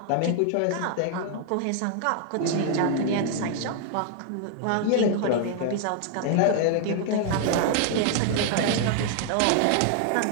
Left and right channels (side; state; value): both; different; correlation 0.00